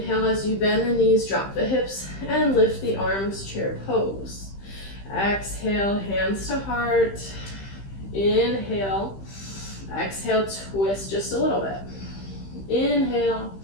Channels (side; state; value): right; late; 15 ms